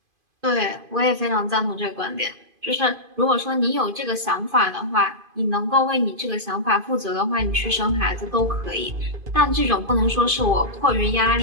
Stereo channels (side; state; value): left; late; 2.5 ms